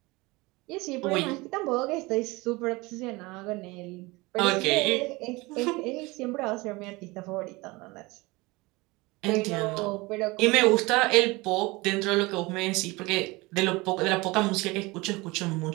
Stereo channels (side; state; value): left; quieter; 23.2 dB